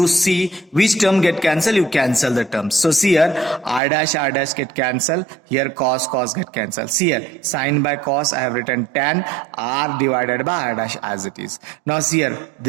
see which term get cancelled, you cancel the terms. So see here r dash get cancelled, here cos get cancelled. See here sin by cos, I have written tan, r divided by r dash as it is. Now see here,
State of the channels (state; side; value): drops out; left; at 3.8 s